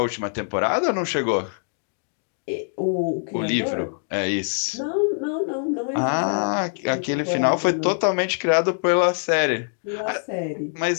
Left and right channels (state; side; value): silent; right; digital silence